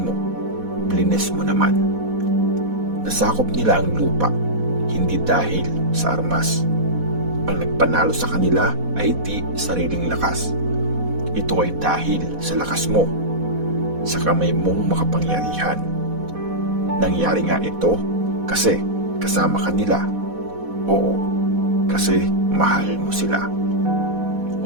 mo, blinis mo naman. Nasakop nila ang lupa, hindi dahil sa armas. Ang nagpanalo sa kanila ay di sariling lakas. Ito ay dahil sa lakas mo, sa kamay mong makapangyarihan. Nangyari nga ito kasi kasama ka nila. Oo, kasi mahal mo sila.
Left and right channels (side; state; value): left; late; 4.1 ms